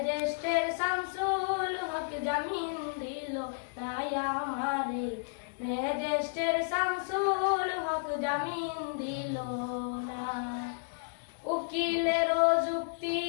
শামসুল হক জামিন দিল না আমারে, ম্যাজিস্ট্রেট শামসুল হক জামিন দিল না। উকিলের যুক্তি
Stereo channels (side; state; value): right; silent; digital silence